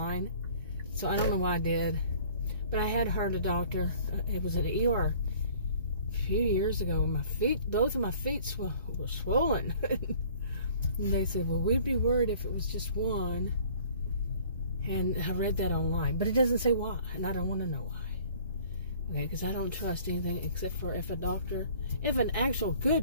so I don't know why I did, but I had heard a doctor, it was at an ER a few years ago, my feet, both of my feet were swollen, and they said, well, we'd be worried if it was just one, and I read that online, but it doesn't say why, and I don't want to know why. Okay, because I don't trust anything except for if an actual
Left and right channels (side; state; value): both; inverted; correlation -0.52